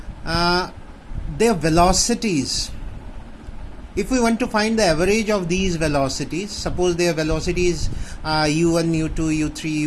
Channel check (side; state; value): both; identical; correlation 1.00